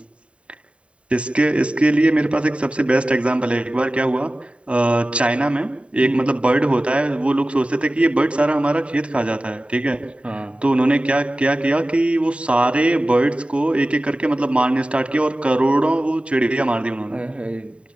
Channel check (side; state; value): left; late; 0.061 ms